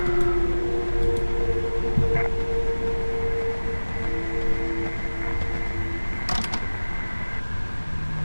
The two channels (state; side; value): inverted; both; correlation -1.00